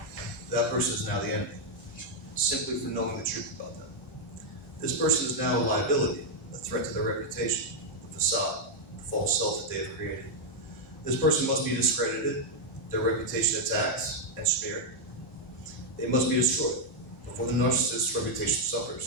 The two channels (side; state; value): both; normal; correlation -0.01